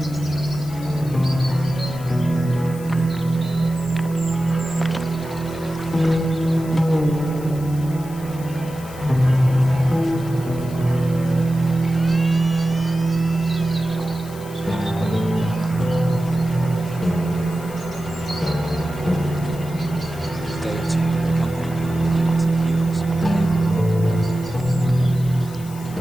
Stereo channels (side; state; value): left; noise; hiss, 19 dB below the sound